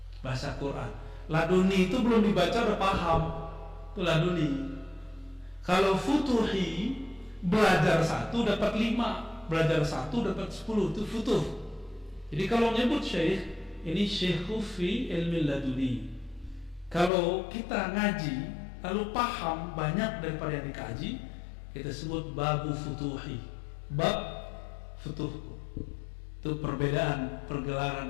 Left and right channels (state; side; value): drops out; right; at 17.1 s